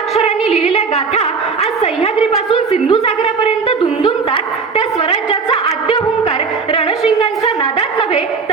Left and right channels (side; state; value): left; quieter; 5.1 dB